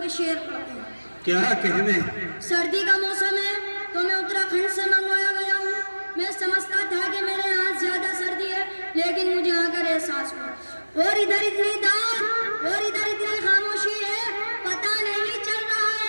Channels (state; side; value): inverted; both; correlation -1.00